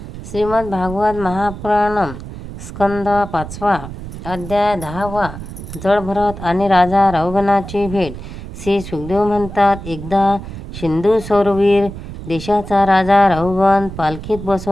श्रीमद भागवत महापुराणम स्कंद 5 अध्याय 10 जळभरत आणि राजा रौगणाची भेट. श्री सुखदेव म्हणतात, एकदा सिंधू सौरवीर देशाचा राजा रौगण पालखीत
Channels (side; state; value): right; noise; rumble, 11 dB below the sound